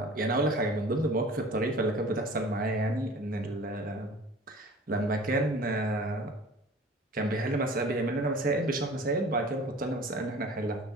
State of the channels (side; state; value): both; normal; correlation 0.44